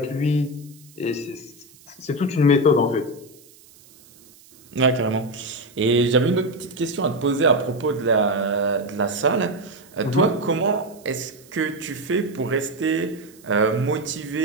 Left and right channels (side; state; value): right; noise; hiss, 25 dB below the sound